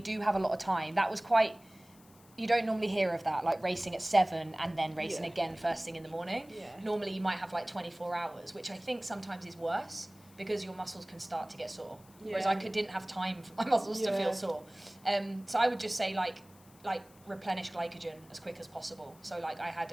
have a lot of time, that was quite. You don't normally hear of that, like racing at 7 and then racing again first thing in the morning. Yeah. Normally you might have like 24 hours, which I think sometimes is worse because your muscles can start to get sore. Whereas I didn't have time for my muscles to feel sore. So I would just say like replenish glycogen as quick as possible. So like I had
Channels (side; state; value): left; noise; hiss, 26 dB below the sound